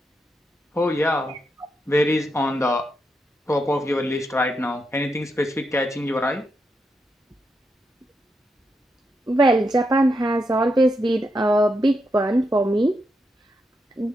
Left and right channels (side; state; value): both; normal; correlation 0.83